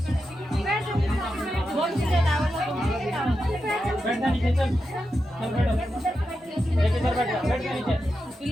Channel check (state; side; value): normal; both; correlation 0.88